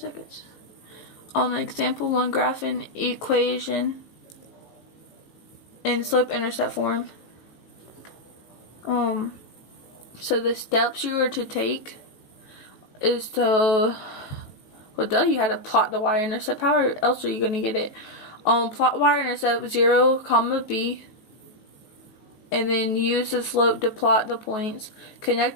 Example 1, graphing equation in slope-intercept form. So the steps you were to take is to, well, you had to plot the y-intercept. How else are you going to get it? Plot y-intercept 0, comma b, and then use the slope to plot the points. Connect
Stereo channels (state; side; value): late; right; 18 ms